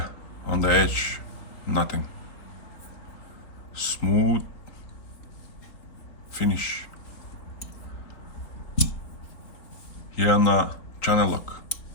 on the edge, nothing. Smooth finish. Here on the channel lock,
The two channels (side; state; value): right; late; 3.7 ms